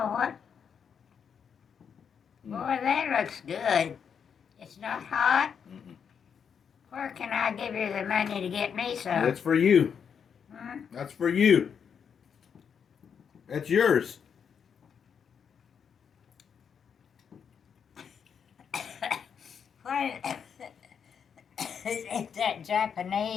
what. Boy, that looks good. It's not hot. Where can I give you the money to get me some? That's for you. Hmm? That's for you. That's yours. What? Is that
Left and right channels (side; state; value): right; quieter; 7.2 dB